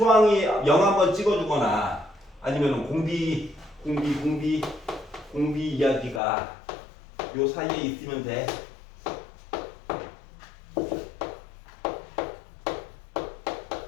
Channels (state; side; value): drops out; right; at 6.2 s